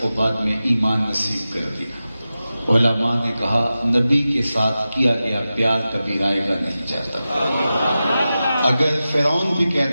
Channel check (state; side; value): inverted; both; correlation -0.94